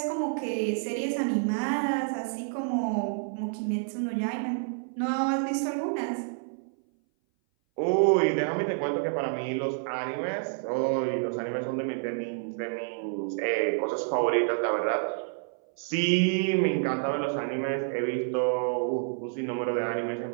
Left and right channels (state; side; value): silent; left; 58 dB below the other